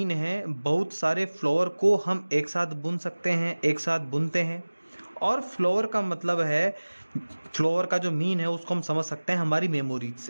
है बहुत सारे फ्लावर को हम एक साथ बुन सकते हैं, एक साथ बुनते हैं। और फ्लावर का मतलब है, फ्लावर का जो मीन है उसको हम समझ सकते हैं हमारी मेमोरीज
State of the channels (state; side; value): inverted; both; correlation -1.00